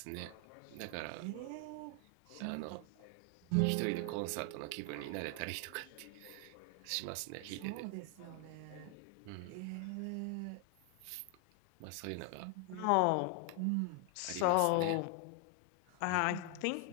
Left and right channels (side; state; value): both; different; correlation 0.00